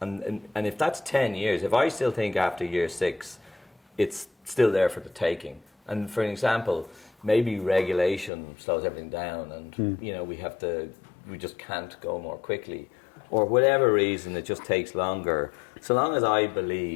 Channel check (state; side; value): drops out; right; at 8.3 s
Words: if that's 10 years, if I still think after year 6, it's still there for the taking. And for an example, maybe regulation slows everything down, and we just can't go more quickly, or whatever reason it just takes longer. So long as I